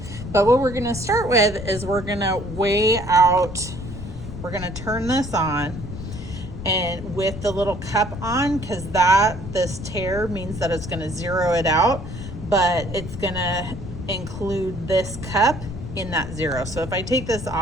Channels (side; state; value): left; noise; rumble, 9 dB below the sound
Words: But what we're going to start with is we're going to weigh out. We're going to turn this on, and with the little cup on, because this tear means that it's going to zero it out, but it's going to include this cup in that zero. So if I take this